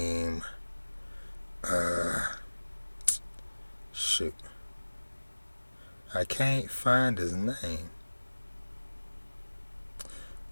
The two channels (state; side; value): inverted; both; correlation -1.00